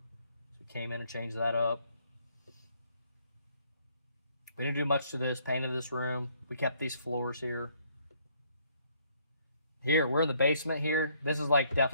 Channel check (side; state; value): both; inverted; correlation -0.66